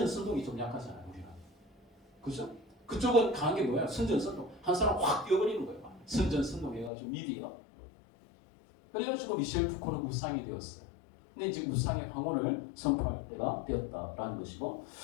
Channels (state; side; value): drops out; right; at 6.9 s